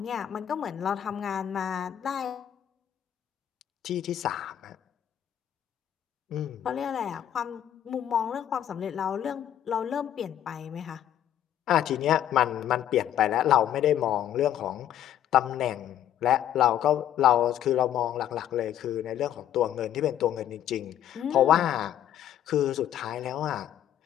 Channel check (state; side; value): quieter; right; 10.9 dB